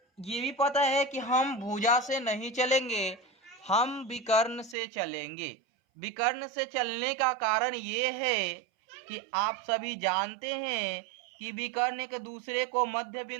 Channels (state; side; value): drops out; left; at 4.8 s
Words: ये भी पता है कि हम भुजा से नहीं चलेंगे, हम विकर्ण से चलेंगे। विकर्ण से चलने का कारण ये है कि आप सभी जानते हैं कि विकर्ण एक दूसरे को मध्य